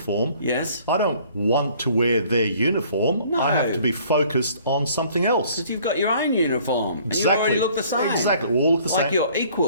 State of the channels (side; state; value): both; inverted; correlation -0.56